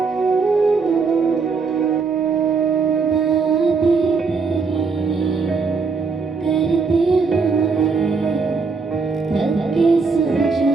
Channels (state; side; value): quieter; left; 4.8 dB